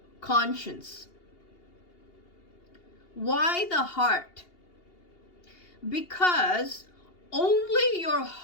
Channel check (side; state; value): right; late; 2.8 ms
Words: conscience. Why the heart? Because only your